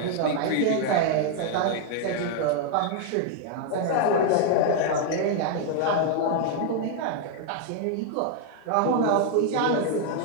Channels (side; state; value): both; different; correlation 0.00